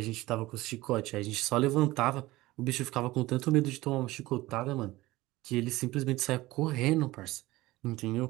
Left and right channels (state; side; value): quieter; left; 18.7 dB